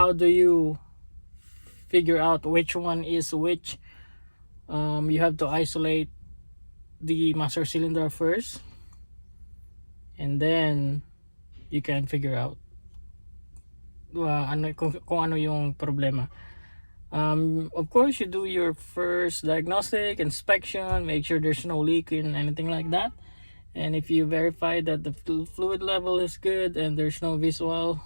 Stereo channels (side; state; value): both; inverted; correlation -1.00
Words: do you figure out which one is which? You have to isolate the master cylinder first, and then you can figure out kung ano yung problema. Of course, you do your first diagnostic inspection, make sure there's no leak in anything like that, and if you verify that the fluid level is good and there's no